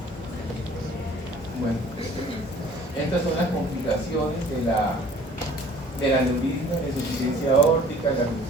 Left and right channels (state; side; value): normal; both; correlation 0.52